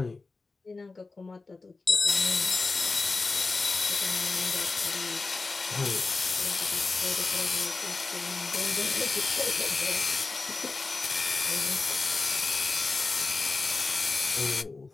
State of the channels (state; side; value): quieter; right; 3.8 dB